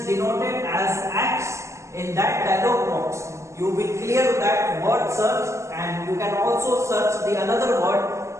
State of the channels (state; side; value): late; left; 0.14 ms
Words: denoted as X in that dialog box. You will clear that word search, and you can also search the another word